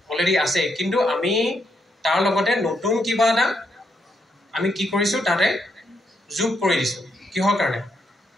অলৰেডি আছেই কিন্তু আমি তাৰ লগতে নতুন কিবা এটা আমি কি কৰিছোঁ তাতে যোগ কৰি দিছোঁ কিহৰ কাৰণে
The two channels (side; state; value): both; normal; correlation 0.78